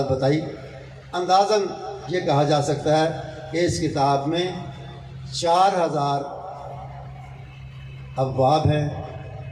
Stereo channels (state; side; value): identical; both; correlation 1.00